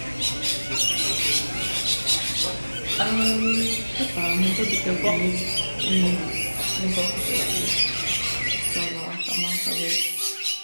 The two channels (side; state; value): both; inverted; correlation -1.00